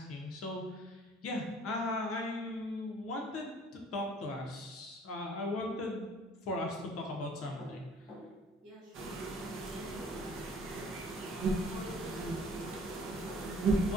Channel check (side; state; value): both; normal; correlation 0.55